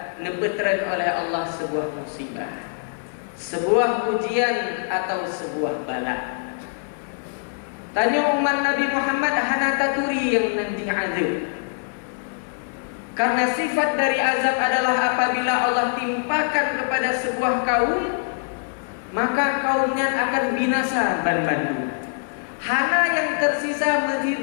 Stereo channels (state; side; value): silent; right; digital silence